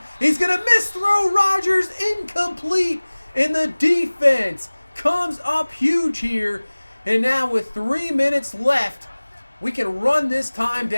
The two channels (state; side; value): inverted; both; correlation -1.00